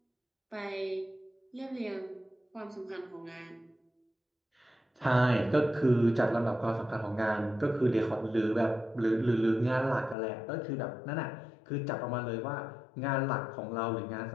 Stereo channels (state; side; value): drops out; right; at 10.2 s